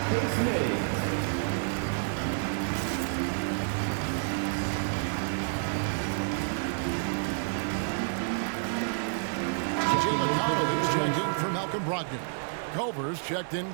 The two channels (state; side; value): silent; left; digital silence